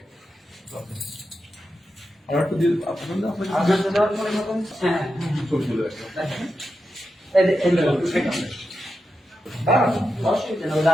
আর একটু দিয়ে আপনাদের ছবি তুলে রাখবেন।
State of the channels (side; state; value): both; normal; correlation 0.88